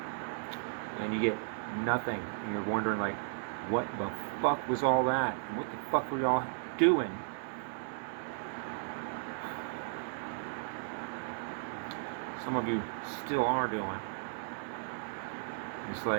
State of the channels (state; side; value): silent; left; 54 dB below the other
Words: and you get nothing, and you're wondering like, what the fuck was all that? And what the fuck were y'all doing? Some of you still are doing. It's